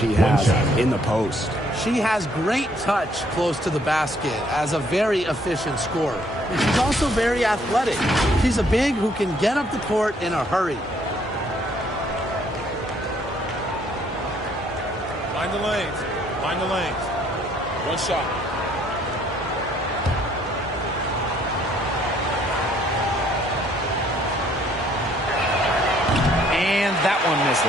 has in the post. She has great touch close to the basket as a very efficient scorer. And she's also very athletic. She's a big who can get up the court in a hurry. Find the lanes. Find the lanes. One shot. And that one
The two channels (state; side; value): normal; both; correlation 0.65